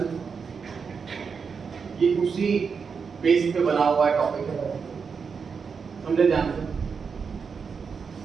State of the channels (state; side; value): quieter; left; 5.8 dB